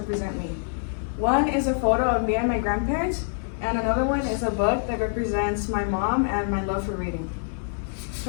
me. One is a photo of me and my grandparents, and another one is a book that represents my mom and my love for reading.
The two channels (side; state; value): right; silent; digital silence